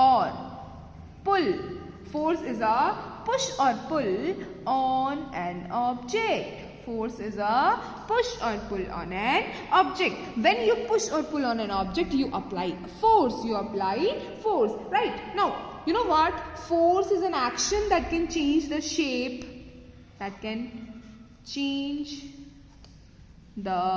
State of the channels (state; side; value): identical; both; correlation 1.00